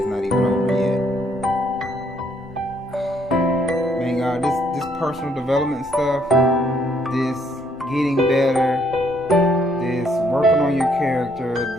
not even over yet. Man, God, this personal development stuff, this getting better, this working on your character,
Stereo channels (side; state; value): both; normal; correlation 0.68